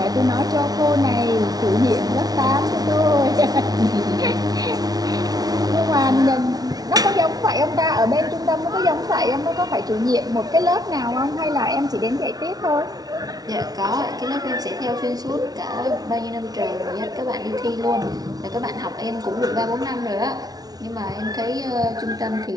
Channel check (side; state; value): left; late; 0.19 ms